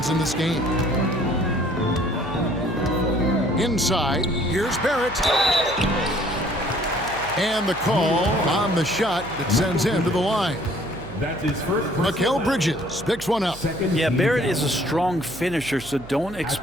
in this game. Inside, here's Barrett. And the call on the shot that sends him to the line. That's his first. Mikal Bridges picks one up. Yeah, Barrett is a strong finisher, so don't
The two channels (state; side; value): noise; right; hum, 17 dB below the sound